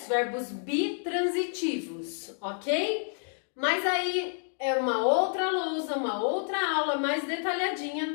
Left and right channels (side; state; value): right; silent; 58 dB below the other